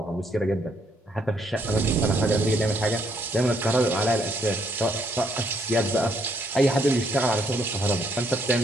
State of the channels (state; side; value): normal; both; correlation 0.71